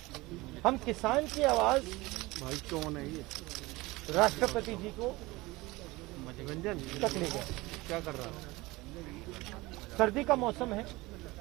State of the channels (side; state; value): left; quieter; 21.3 dB